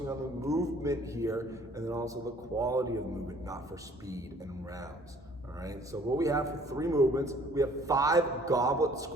on the movement here and then also the quality of movement, not for speed and rounds. All right, so what we have for 3 movements, we have 5 goblet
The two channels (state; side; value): normal; both; correlation 0.57